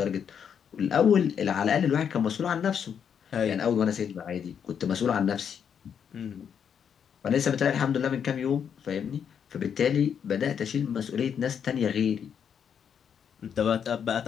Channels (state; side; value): quieter; right; 7.8 dB